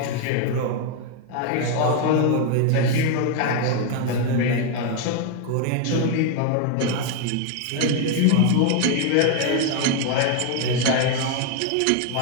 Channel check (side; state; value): both; different; correlation 0.01